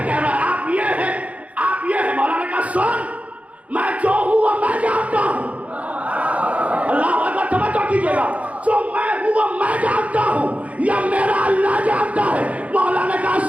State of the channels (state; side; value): late; left; 0.066 ms